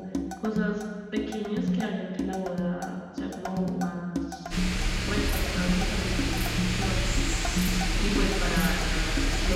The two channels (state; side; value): identical; both; correlation 1.00